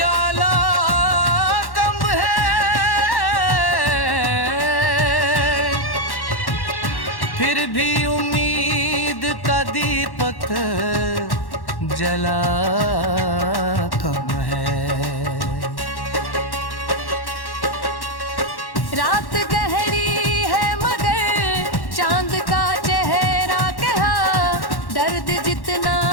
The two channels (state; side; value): late; right; 1.1 ms